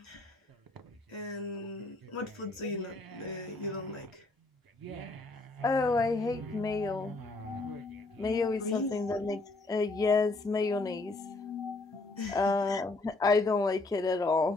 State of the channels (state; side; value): quieter; right; 3.2 dB